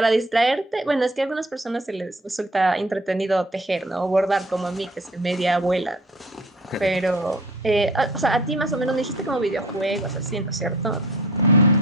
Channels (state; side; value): normal; both; correlation 0.48